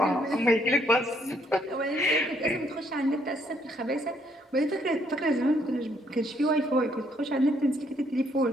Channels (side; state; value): both; normal; correlation 0.70